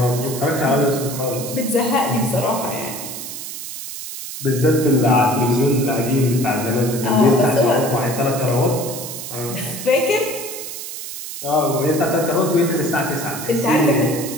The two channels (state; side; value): noise; right; hiss, 9 dB below the sound